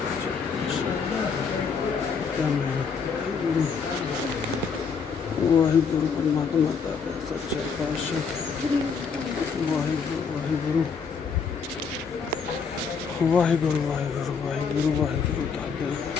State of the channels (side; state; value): right; quieter; 5.7 dB